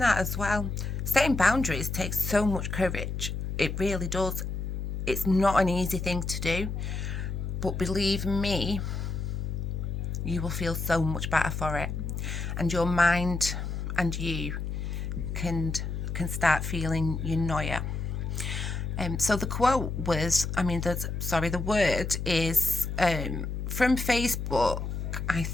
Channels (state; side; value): noise; left; hum, 4 dB below the sound